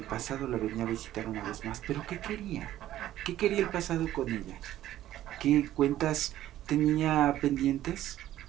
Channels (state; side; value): quieter; left; 13.4 dB